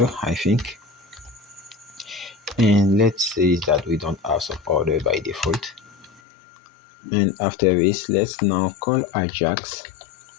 I think, and let's say that we don't have some order by default. And after this, let's now call Ajax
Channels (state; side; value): drops out; right; at 6.2 s